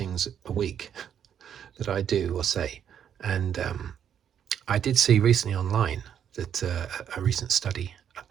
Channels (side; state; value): left; quieter; 8.9 dB